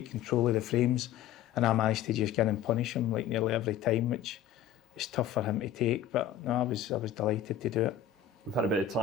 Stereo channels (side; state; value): right; quieter; 9.7 dB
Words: control of the frames, and I managed to just get in and punish him like nearly every time, which is tough for him to take. But no, I was delighted to do it. We've had a bit of